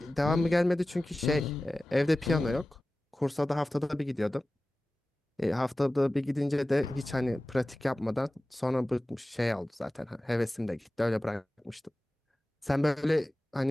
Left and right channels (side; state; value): both; normal; correlation 0.96